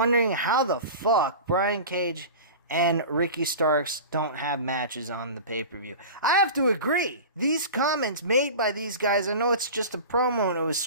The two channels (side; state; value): both; inverted; correlation -0.33